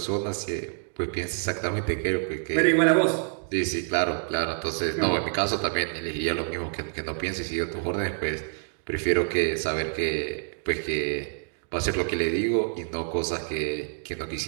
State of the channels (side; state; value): left; silent; 60 dB below the other